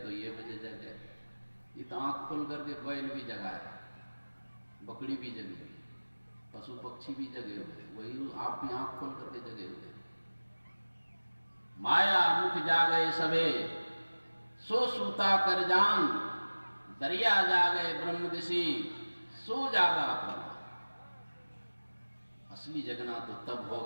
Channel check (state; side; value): inverted; both; correlation -1.00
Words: बजे जग गए। ये तो आंख खोल करके बैल भी जगा है, बकरी भी जगी हुई, पशु पक्षी भी जगे हुए, वही आप भी आंख खोल करके जगे हुए। माया मुख जागे सबे, सो सूता कर जान। दरिया जागे ब्रह्म दिशी, सो जागा अपना। असली जगना तो तब